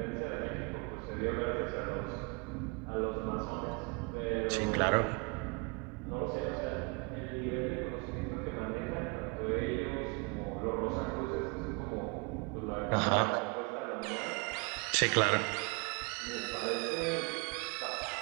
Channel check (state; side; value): quieter; left; 31.8 dB